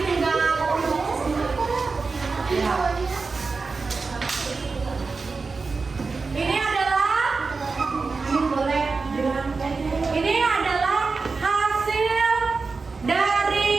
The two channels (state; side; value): quieter; left; 4.3 dB